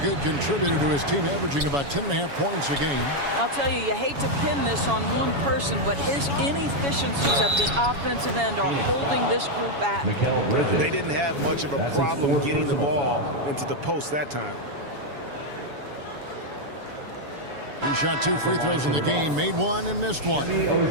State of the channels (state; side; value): late; left; 7.1 ms